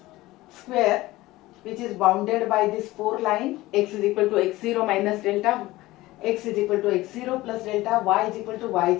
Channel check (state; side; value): quieter; right; 18.3 dB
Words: which is bounded by this 4 line. X is equal to x0 minus delta, x is equal to x0 plus delta, y is equal to